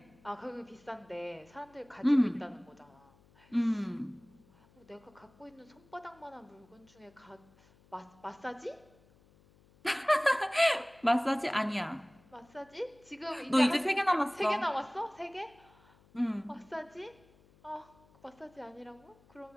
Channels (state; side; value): noise; left; hum, 29 dB below the sound